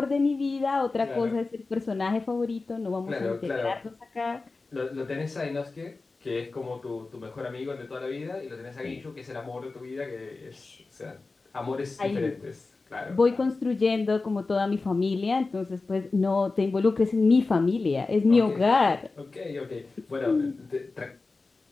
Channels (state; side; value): quieter; right; 3.7 dB